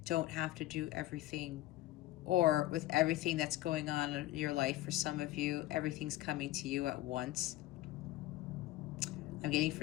don't have to do everything, or with everything that's going on in your life. For some of you, everything's coming to you at once. I'm getting,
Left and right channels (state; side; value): quieter; right; 16.3 dB